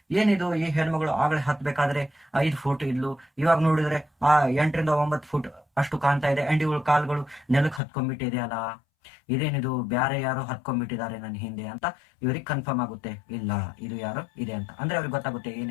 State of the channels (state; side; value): drops out; right; at 7.8 s